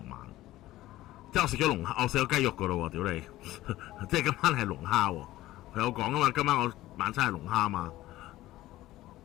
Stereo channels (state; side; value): quieter; right; 16.0 dB